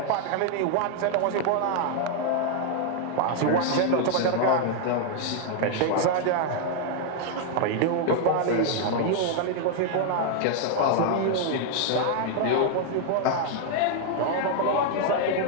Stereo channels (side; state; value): both; different; correlation 0.00